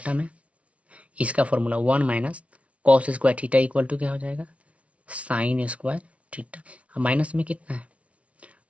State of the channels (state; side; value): late; left; 0.064 ms